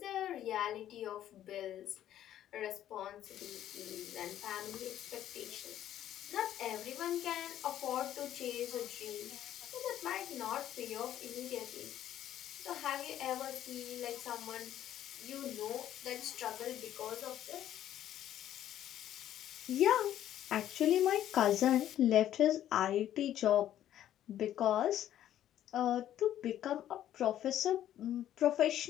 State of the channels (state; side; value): quieter; right; 11.7 dB